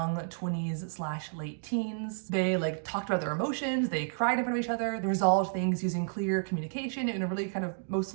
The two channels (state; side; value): silent; left; digital silence